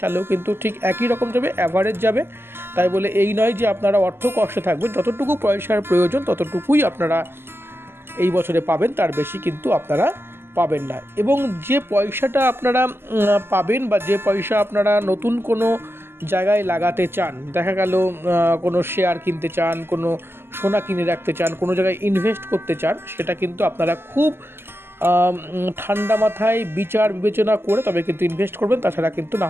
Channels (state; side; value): late; left; 0.11 ms